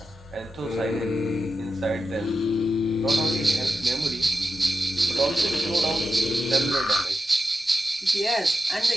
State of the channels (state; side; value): normal; both; correlation 0.89